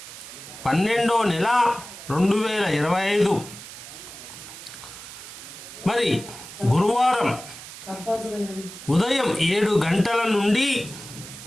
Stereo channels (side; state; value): right; noise; hiss, 14 dB below the sound